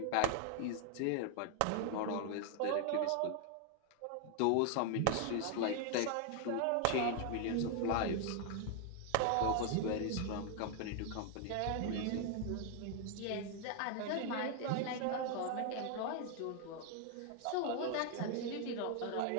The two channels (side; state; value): both; different; correlation 0.00